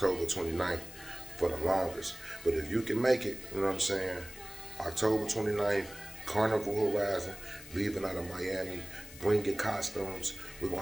29th for the longest. But if you can make it, you know what I'm saying, October 29th, Carnival Horizon, leaving out of Miami, bring your costumes. We're going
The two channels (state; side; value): noise; left; hiss, 17 dB below the sound